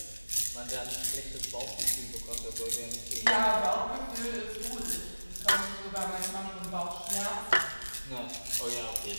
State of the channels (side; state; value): both; inverted; correlation -1.00